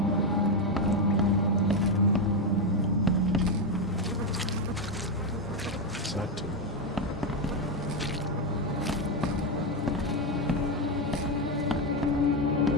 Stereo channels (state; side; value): normal; both; correlation 0.06